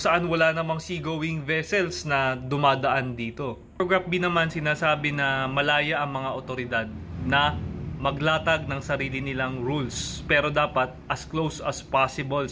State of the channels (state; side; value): identical; both; correlation 1.00